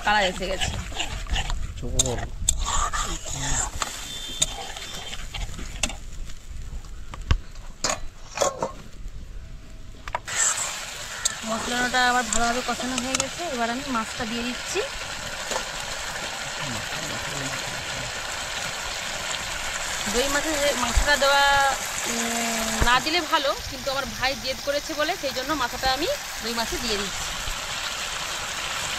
কালার এসে গেছে। মশলাটা আবার ভালোভাবে কষানো হয়ে গেছে, এবার আমি মাছটা দিয়ে দিচ্ছি। দই মাছটা দেওয়া না দিলে ভালো, কিন্তু আমার ভাই জেদ করেছে বলে সেই জন্য মাথাটা আমি দই মাছে দিয়ে দিচ্ছি।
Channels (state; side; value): identical; both; correlation 1.00